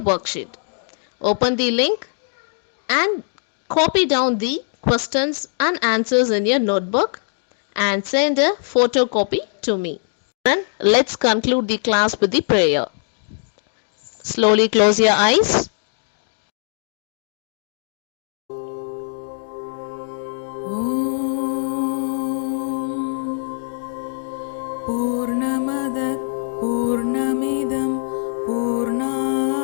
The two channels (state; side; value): silent; right; digital silence